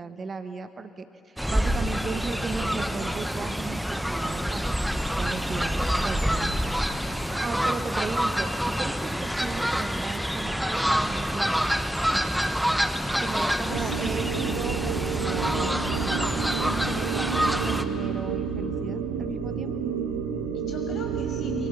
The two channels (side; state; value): both; normal; correlation 0.84